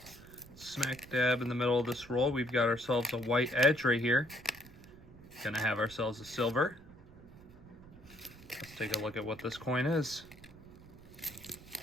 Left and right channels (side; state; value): right; noise; rumble, 20 dB below the sound